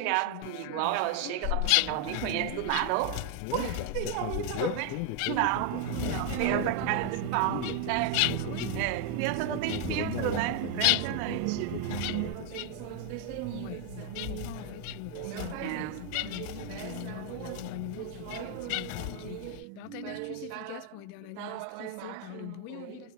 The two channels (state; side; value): different; both; correlation 0.00